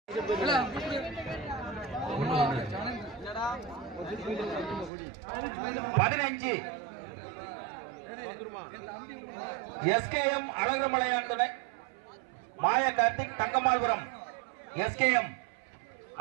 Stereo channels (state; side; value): drops out; left; at 4.9 s